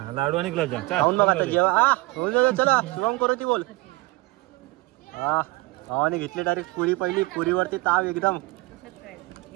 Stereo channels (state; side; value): quieter; left; 22.4 dB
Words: लाडू आणि गुलाबजाम खाऊन बघा आता जेवा. चला शुभम करू ती बोल. हा भावाने घेतली डायरेक्ट पुरी, पहिली पुरीवरती ताव एकदम